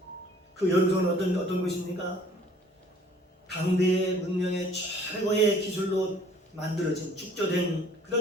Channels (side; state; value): both; normal; correlation 0.55